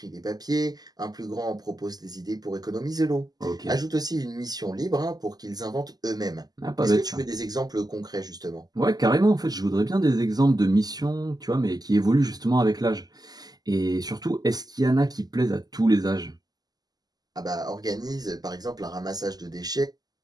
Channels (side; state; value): left; late; 0.19 ms